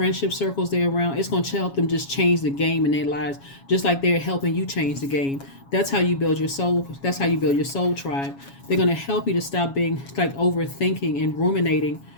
circles they're around. It's going to help them just change the game in their lives, just like they're helping you change the game. That's how you build your soul. That's how you build your soul tribe. They're going to help you to stop being like overthinking and ruminating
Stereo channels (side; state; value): right; late; 7.3 ms